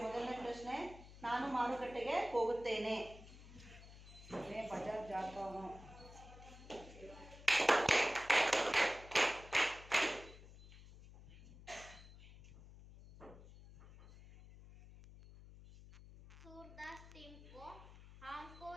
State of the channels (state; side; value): noise; left; hum, 17 dB below the sound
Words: ಮೊದಲನೇ ಪ್ರಶ್ನೆ, ನಾನು ಮಾರುಕಟ್ಟೆಗೆ ಹೋಗುತ್ತೇನೆ। मैं बाजार जाता हूँ। सूरदास टीम को हमको